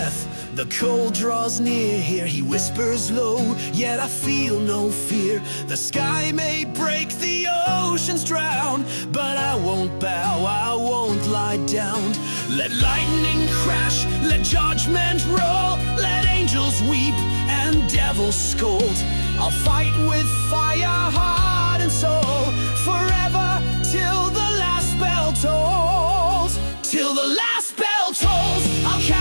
the cold draws near. Here he whispers low, yet I feel no fear. The sky may break, the oceans drown, but I won't bow, I won't lie down. Let lightning crash, let judgment roll, let angels weep and devils scold. I'll fight with fire, heart and soul, forever till the last bell tolls. Till the last bell tolls, I'll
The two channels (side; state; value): both; inverted; correlation -1.00